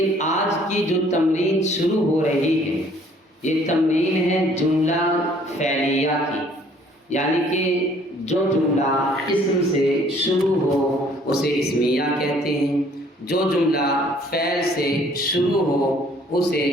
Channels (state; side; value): normal; both; correlation 0.59